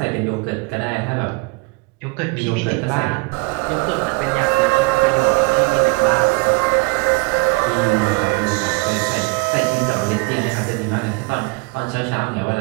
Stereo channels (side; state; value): left; quieter; 28.7 dB